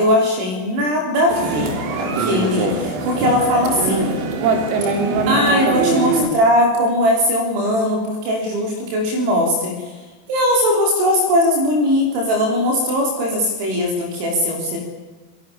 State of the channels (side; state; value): left; late; 27 ms